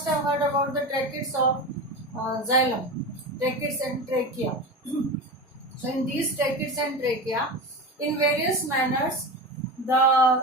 have heard about the tracheids of xylem, tracheids and trachea. So in these tracheids and trachea, in various manners,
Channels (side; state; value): both; normal; correlation 0.25